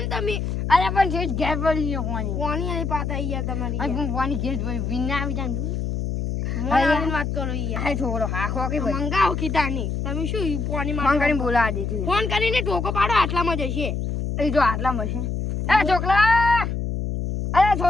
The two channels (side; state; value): left; noise; hum, 2 dB below the sound